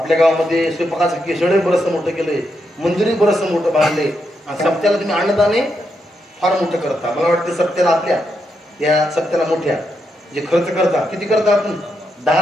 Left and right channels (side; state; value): both; normal; correlation 0.82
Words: गावामध्ये स्वयंपाकाचं केसडे बरंचसं मोठं केलंय, मंदिरही बरंचसं मोठं बांधलंय. आणि सप्त्याला तुम्ही अन्नदाने फार मोठं करता. मला वाटतं सप्त्याला आपल्या या सप्त्याला मोठ्या जे खर्च करता, किती करता आपण? 10